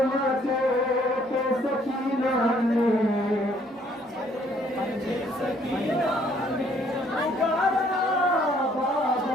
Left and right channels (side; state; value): both; normal; correlation 0.64